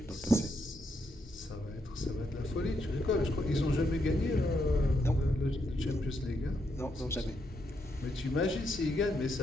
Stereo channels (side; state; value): both; normal; correlation 0.79